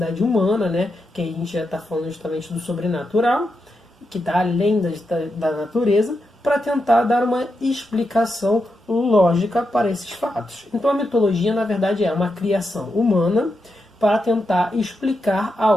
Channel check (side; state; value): both; normal; correlation 0.86